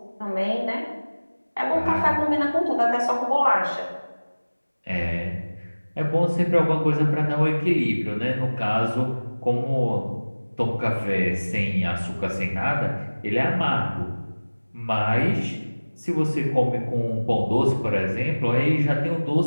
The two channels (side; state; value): both; inverted; correlation -1.00